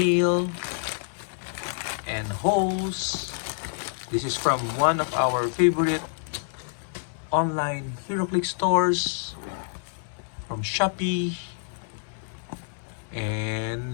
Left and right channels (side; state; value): right; silent; 58 dB below the other